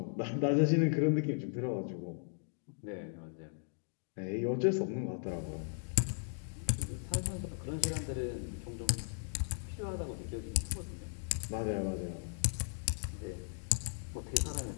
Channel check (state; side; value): silent; right; digital silence